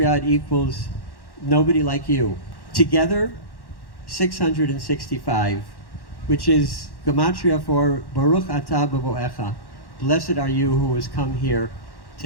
it equals nobody like you. Together, 665, which is Gematria for Baruch Atah B'Boecha. Blessed are you who has come here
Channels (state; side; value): late; right; 1.1 ms